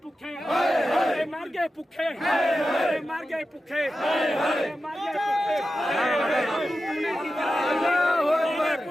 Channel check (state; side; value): normal; both; correlation 0.92